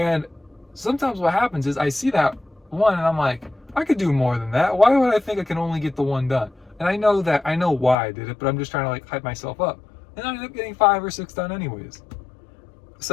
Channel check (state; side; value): drops out; right; at 8.0 s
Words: sometimes what happens is I see that one and I'm like, I could do more than that. Why would I think I can only get the one done? And I know why I did it, but I'm just trying to like hype myself up. And I ended up getting 5 or 6 done anyways.